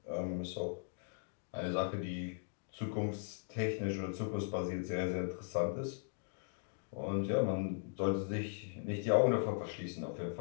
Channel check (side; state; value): right; silent; digital silence